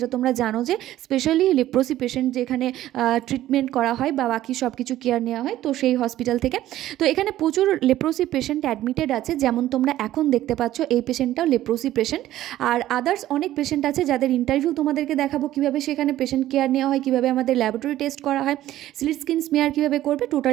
তোমরা জানো যে স্পেশালি লেপ্রোসি পেশেন্ট যেখানে ট্রিটমেন্ট করা হয় বা বাকি সব কিছু কেয়ার নেওয়া হয়, তো সেই হসপিটাল থেকে। তো এখানে প্রচুর লেপ্রোসি পেশেন্ট অ্যাডমিটেড আছে, যেমন তোমরা এখন দেখতে পাচ্ছ এই পেশেন্টটাও লেপ্রোসি পেশেন্ট। আর আদার্স অনেক পেশেন্ট আছে যাদের ইন্টারভিউ তোমাদেরকে দেখাবো, কীভাবে সেখানে পেশেন্ট কেয়ার নেওয়া হয়, কীভাবে আমাদের ল্যাবরেটরি টেস্ট করা হয়, স্লিট স্কিন স্মিয়ার কীভাবে করবে,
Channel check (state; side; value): quieter; left; 13.9 dB